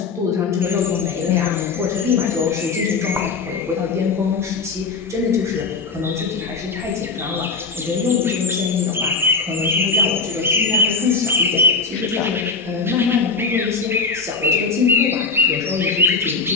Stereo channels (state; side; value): quieter; right; 4.6 dB